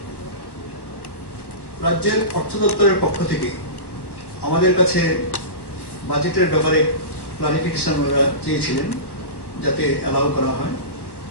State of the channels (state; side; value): late; right; 1.1 ms